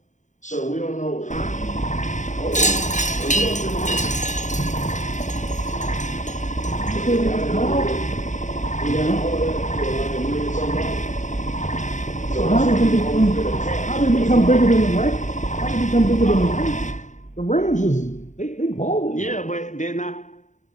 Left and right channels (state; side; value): late; right; 0.36 ms